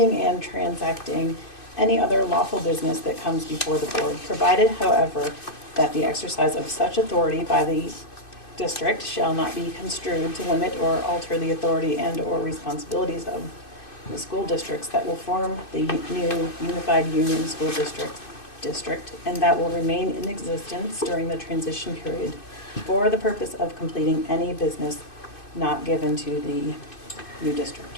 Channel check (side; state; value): right; late; 2.6 ms